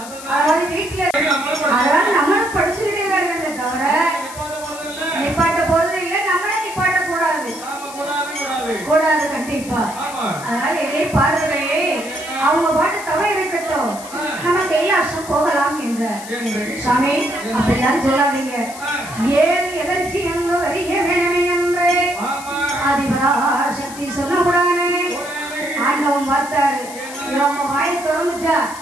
அதாவது வீட்டுல அதனால நம்மளும் படிச்சுக்கிட்டே தான் இருக்க தவிர நிப்பாட்ட போறது இல்ல, நம்மள நிப்பாட்ட கூடாது கூடாது கண்டிப்பா. அதனால இதே பார்வையே அவங்க பாட்டு தவறு இருக்கட்டும், நம்ம கைலாசம் போகலாம் என்ற சாமி அப்படிலாம் சொல்லாதீங்க. ஏன் எதற்கு என்று அறிய வேணுமே என்று ஆதிபராசக்தி சொல்லக்கூடாது. ஆண்டவன் பார்த்தாரு, நம்ம வாயை திறந்துச்சா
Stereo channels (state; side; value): noise; left; hiss, 14 dB below the sound